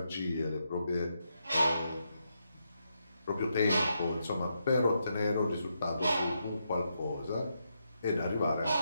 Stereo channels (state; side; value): inverted; both; correlation -0.82